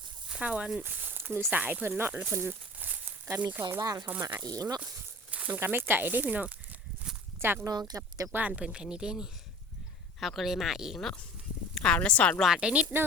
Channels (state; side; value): normal; both; correlation 0.41